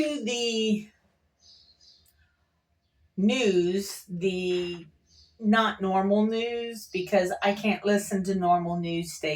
the news, the not normal news, because I can't listen to normal news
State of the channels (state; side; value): identical; both; correlation 1.00